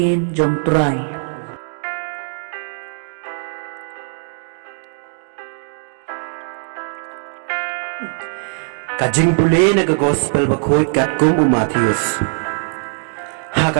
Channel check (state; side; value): silent; left; 66 dB below the other